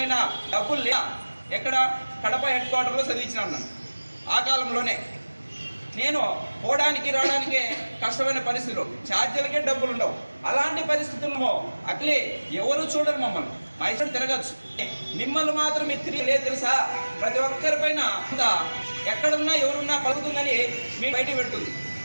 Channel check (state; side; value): inverted; both; correlation -1.00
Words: డబ్బులు లే ఎక్కడ కడప హెడ్ క్వార్టర్లో చదివించినాను నన్ను. ఆ కాలంలోనే నేను పోవడానికి రావడానికే కష్టమైన పరిస్థితులు, ఛార్జీలకే డబ్బులు ఉండవు. అలాంటి పరిస్థితుల్లో అట్లే ఎవరు చూడరు మమ్మల్ని. మా ఇష్టం తిరగచ్చు, మిమ్మల్ని మాత్రం మీరు తిరిగి తెలుసా. ప్రతి ఒక్కరి పైన ఎక్కడున్నా ఎవరున్నా పలుకుతుందని మీ బయట పెడుతుంది.